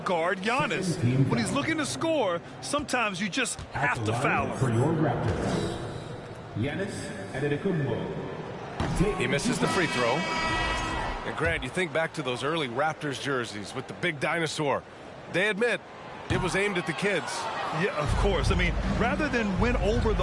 Giannis? When he's looking to score, sometimes you just have to foul him. For your Raptors, Giannis Antetokounmpo. He misses the free throw. And Grant, you think back to those early Raptors jerseys with the big dinosaur. They admit it was aimed at the kids. Yeah, of course. I mean, rather than win over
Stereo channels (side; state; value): both; identical; correlation 1.00